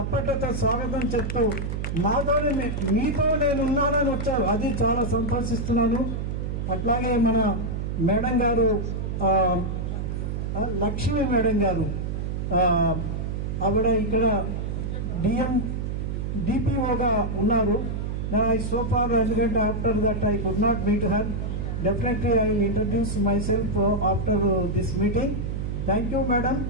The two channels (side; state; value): right; noise; hum, 3 dB below the sound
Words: స్వాగతం చెప్తూ మీతో నేను ఉన్నానని వచ్చారు, అది చాలా సంతోషిస్తున్నాను. అట్లాగే మన మేడం గారు లక్ష్మి మేడం గారు, ఆవిడ ఇక్కడ డిపిఓగా ఉన్నారు. సో ఫార్ ఎందుకంటే after that I could not meet her. Definitely I will introduce myself after this meeting. Thank you, madam.